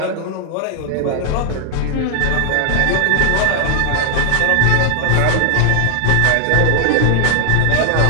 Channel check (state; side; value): different; both; correlation 0.00